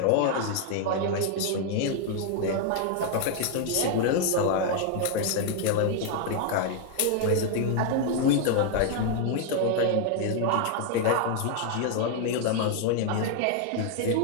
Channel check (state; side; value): different; both; correlation 0.00